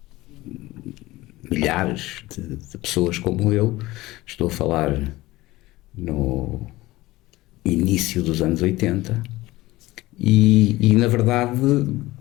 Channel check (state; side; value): quieter; right; 18.6 dB